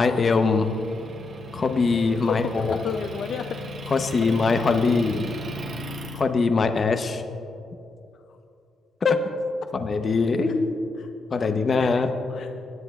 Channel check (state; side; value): quieter; right; 3.7 dB